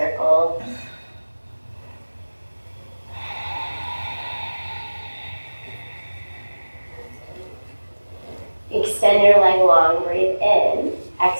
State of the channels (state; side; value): inverted; both; correlation -1.00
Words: Extend your leg long, breathe in.